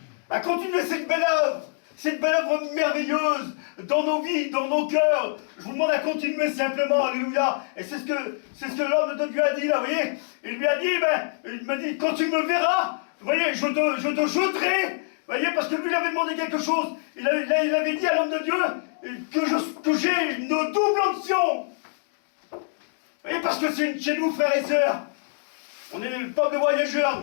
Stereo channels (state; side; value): silent; right; digital silence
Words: À continuer cette belle œuvre merveilleuse dans nos vies, dans nos cœurs. Je vous demande à continuer simplement, alléluia. Et c'est ce que l'homme de Dieu a dit là, vous voyez. Il lui a dit, il m'a dit, quand tu me verras, vous voyez, je te jeterai, vous voyez, parce que lui il avait demandé quelque chose. Il avait dit à l'homme de Dieu que j'ai une double onction. Vous voyez, parce que c'est chez nous, frères et sœurs, on est le peuple de